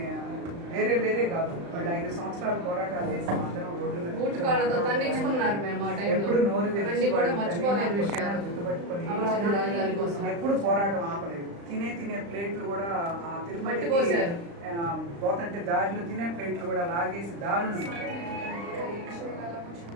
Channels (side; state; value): left; late; 35 ms